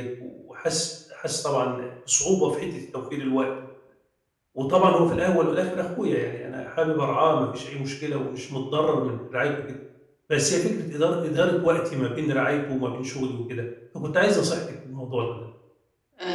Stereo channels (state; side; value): identical; both; correlation 1.00